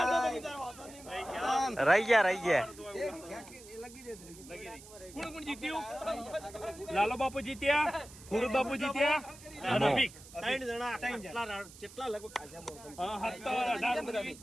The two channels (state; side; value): noise; right; hiss, 19 dB below the sound